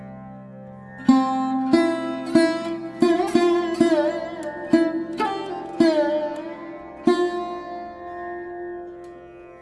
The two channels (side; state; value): both; identical; correlation 1.00